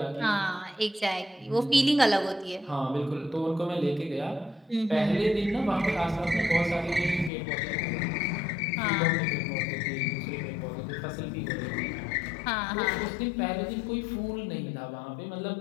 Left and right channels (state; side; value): drops out; right; at 7.3 s